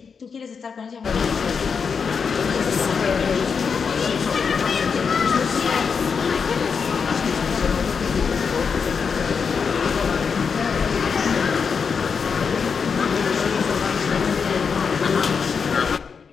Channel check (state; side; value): quieter; right; 5.9 dB